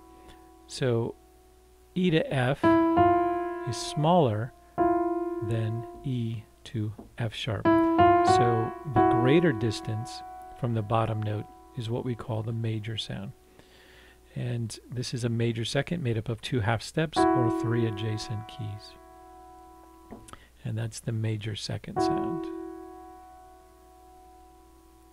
So E to F is smaller than E to F sharp. So the greater distance from the bottom note is what we call the major sound. And this is a major second made up of two half steps or three adjacent keys. And that's the major second sound.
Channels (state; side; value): identical; both; correlation 1.00